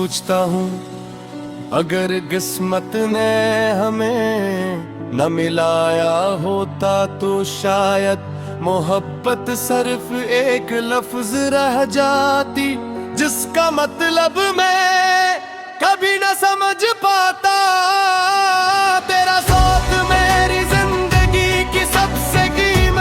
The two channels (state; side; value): identical; both; correlation 1.00